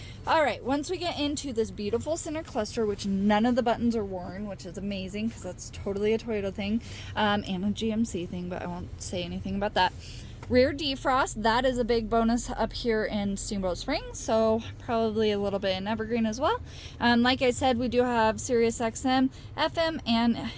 All right. Once we get into this beautiful center cluster, which none of the buttons are worn, which is amazing because that's totally a Toyota thing, and a GMC thing, but I won't say anything about that. Rear defrost, that is a big bonus up here in Steamboat Springs, so probably a little bit in Evergreen as well. Like I said, we do have Sirius XM, FM, and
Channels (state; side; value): identical; both; correlation 1.00